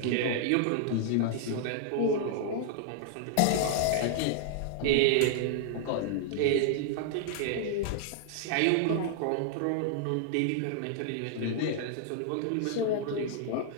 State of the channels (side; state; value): both; different; correlation -0.01